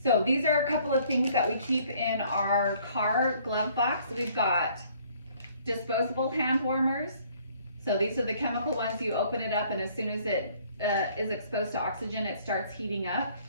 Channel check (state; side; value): inverted; both; correlation -0.60